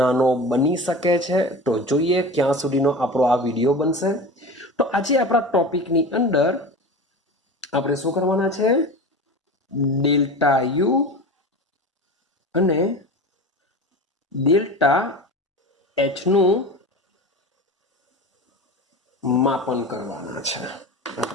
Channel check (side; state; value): both; normal; correlation 0.31